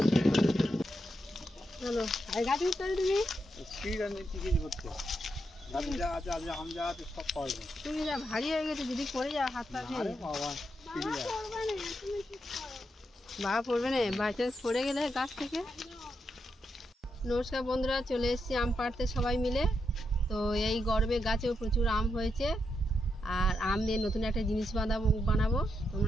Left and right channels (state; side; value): normal; both; correlation 0.83